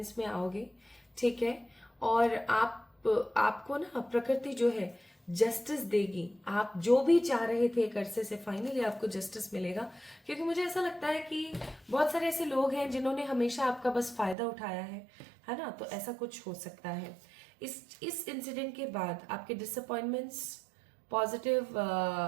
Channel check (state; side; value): drops out; left; at 14.4 s